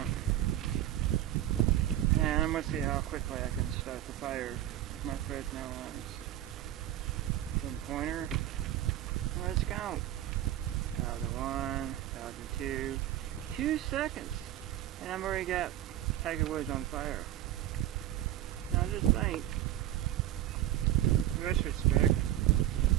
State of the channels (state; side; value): quieter; left; 13.0 dB